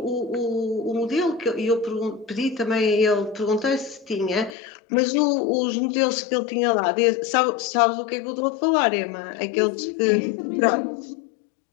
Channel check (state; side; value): drops out; right; at 4.5 s